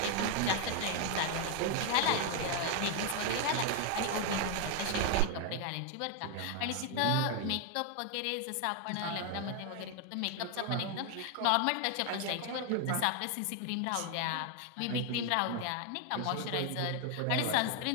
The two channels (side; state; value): both; different; correlation 0.01